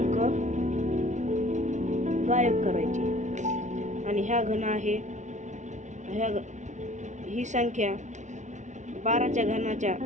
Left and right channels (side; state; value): left; late; 0.35 ms